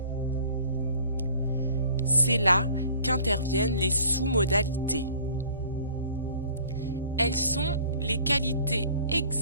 C'est là qu'interviennent les sous-modalités. Elles sont les qualités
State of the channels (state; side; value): inverted; both; correlation -0.51